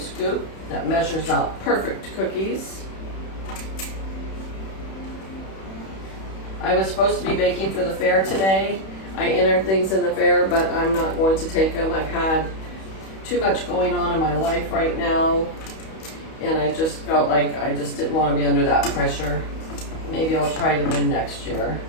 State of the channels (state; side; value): late; right; 31 ms